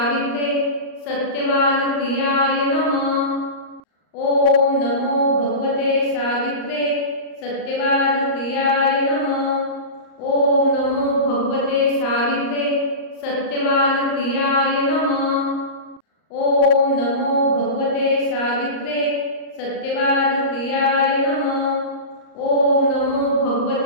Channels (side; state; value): right; late; 38 ms